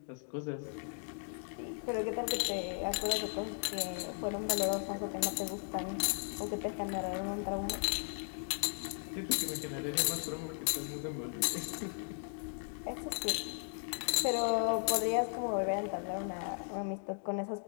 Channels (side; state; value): right; silent; digital silence